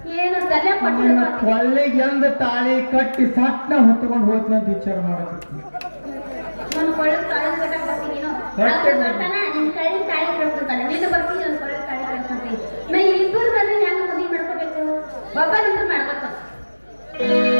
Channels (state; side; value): inverted; both; correlation -1.00